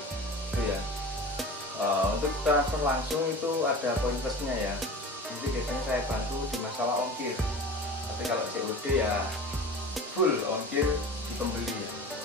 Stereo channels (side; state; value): both; normal; correlation 0.36